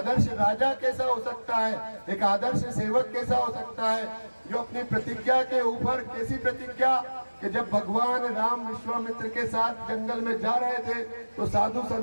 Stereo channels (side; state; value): both; inverted; correlation -1.00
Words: राजा कैसा हो सकता है, एक आदर्श सेवक कैसा हो सकता है, जो अपनी प्रतिज्ञा के ऊपर, कैसी प्रतिज्ञा कि जब भगवान राम विश्वामित्र के साथ जंगल में जा रहे थे तो साधु